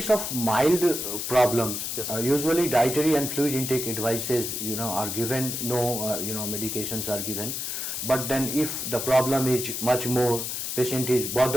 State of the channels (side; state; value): left; noise; hiss, 4 dB below the sound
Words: of mild problems, yes, usually dietary and fluid intake advices are given, no medications are given. But then if the problem is much more, patient is